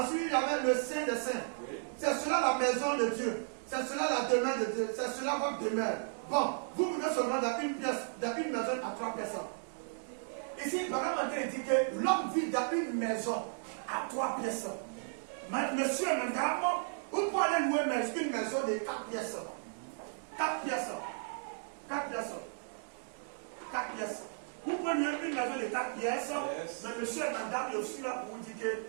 il y avait le saint des saints. Oui. C'est cela la maison de Dieu. C'est cela la demeure de Dieu. C'est cela votre demeure. Bon, vous vivez seulement dans une pièce, dans une maison à 3 personnes. Ici, il va vraiment dire que l'homme vit dans une maison à 3 pièces. Monsieur et madame, vous pouvez aller louer une maison de 4 pièces. 4 pièces. 4 pièces. 4 pièces. Vous pouvez louer une maison de 4 pièces, mais monsieur et madame, je suis là pour vous dire que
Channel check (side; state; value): left; silent; digital silence